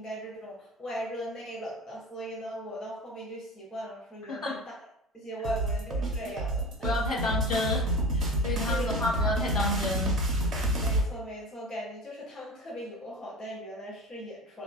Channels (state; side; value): normal; both; correlation 0.33